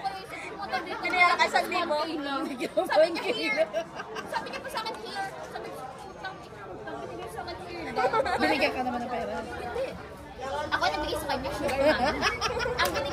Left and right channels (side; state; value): both; identical; correlation 1.00